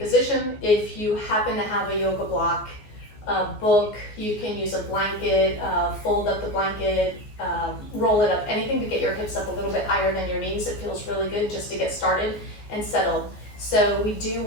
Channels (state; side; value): late; right; 14 ms